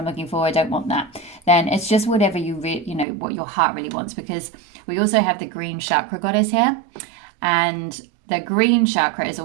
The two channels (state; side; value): drops out; left; at 3.1 s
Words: looking for, I don't want that, then it's just whatever what your heart really wants. Because we also have the green chakra goddess here, and the green chakra is